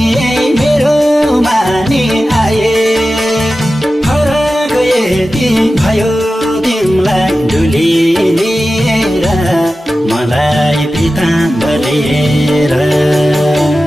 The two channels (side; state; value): both; normal; correlation 0.94